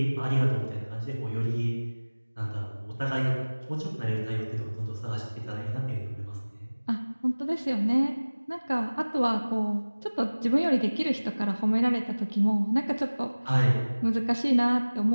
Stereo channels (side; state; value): both; inverted; correlation -1.00